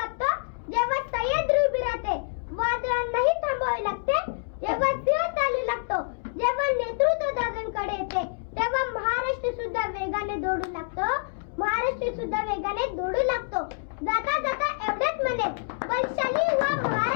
जेव्हा सह्याद्री उभी राहते, वादळांनाही थांबावे लागते जेव्हा सिंह चालू लागतो. जेव्हा नेतृत्व दादांकडे येते तेव्हा महाराष्ट्र सुद्धा वेगाने दौडू लागतो. महाराष्ट्र सुद्धा वेगाने दौडू लागतो. जाता जाता एवढेच म्हणेन, बलशाली हुआ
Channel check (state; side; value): silent; right; digital silence